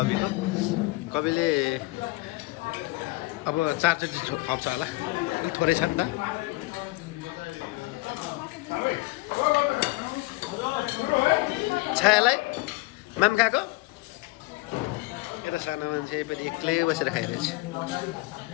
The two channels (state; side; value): quieter; right; 22.8 dB